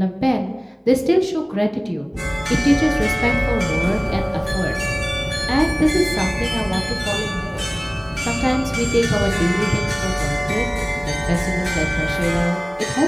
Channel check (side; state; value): both; identical; correlation 1.00